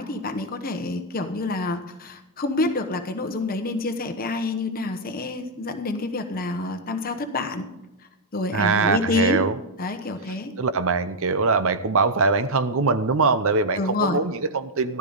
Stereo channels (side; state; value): both; normal; correlation -0.03